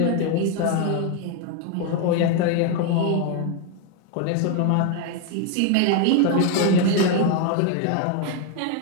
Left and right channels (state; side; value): different; both; correlation 0.01